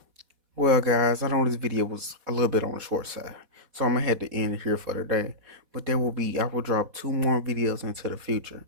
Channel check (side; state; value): left; late; 4.1 ms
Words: Well, guys, I know this video was a little bit on the short side, so I'm gonna have to end it here for today. But I will drop 2 more videos into the future.